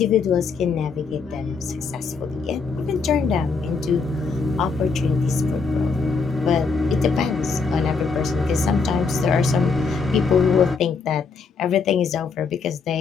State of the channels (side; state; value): right; quieter; 4.7 dB